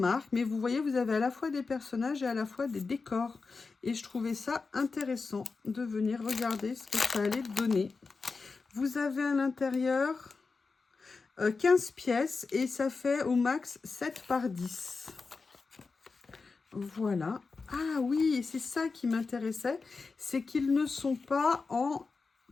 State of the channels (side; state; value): right; quieter; 4.4 dB